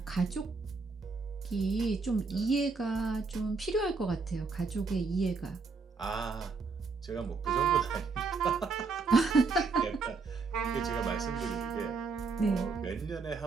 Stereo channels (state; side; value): quieter; left; 4.5 dB